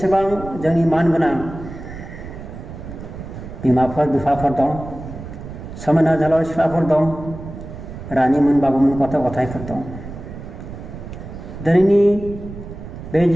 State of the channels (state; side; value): noise; right; rumble, 12 dB below the sound